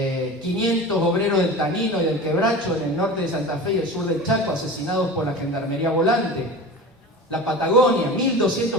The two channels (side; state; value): both; normal; correlation 0.33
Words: 500 obreros del Tanino y del Quebracho en el norte de Santa Fe y el sur del Chaco asesinados por la Gendarmería Volante. La Patagonia,